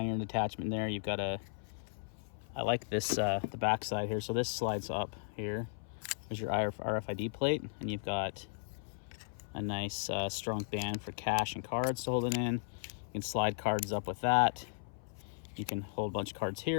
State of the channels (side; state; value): right; silent; 54 dB below the other